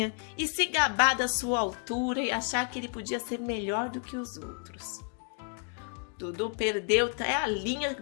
e se gabar da sua altura e achar que ele podia ser melhor do que os outros. Dudu perdeu até a linha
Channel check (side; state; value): right; quieter; 39.0 dB